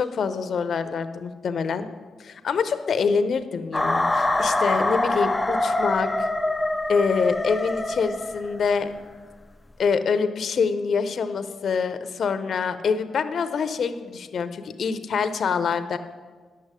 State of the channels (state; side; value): quieter; right; 4.1 dB